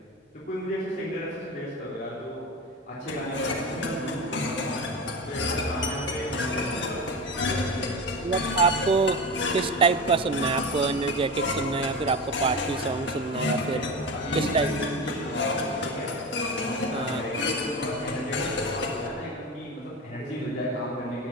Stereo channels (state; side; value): normal; both; correlation 0.25